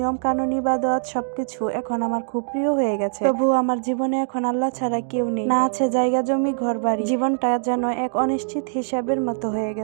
কানুন ইবাদত সবকিছু এখন আমার খুব প্রিয় হয়ে গেছে। তবুও আমার জীবনে এখন আল্লাহ ছাড়া কেউ নেই, না আছে জায়গা জমি ঘর বাড়ি। জীবনটা যেন এক অনিশ্চিত হিসাবের মতো হয়ে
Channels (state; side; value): silent; left; digital silence